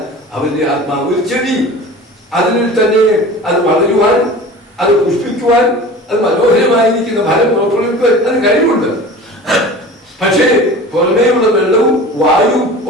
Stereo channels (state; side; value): normal; both; correlation 0.38